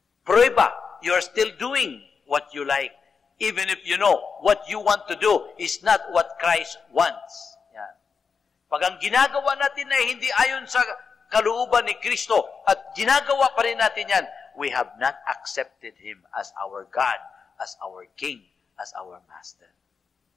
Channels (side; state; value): right; quieter; 5.5 dB